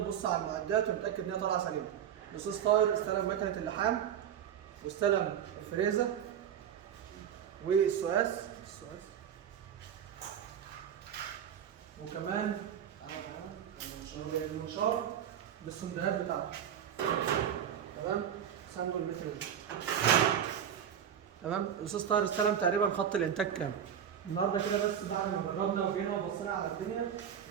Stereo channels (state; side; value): quieter; left; 9.1 dB